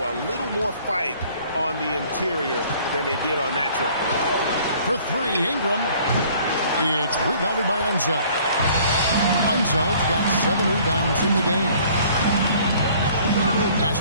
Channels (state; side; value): inverted; both; correlation -0.55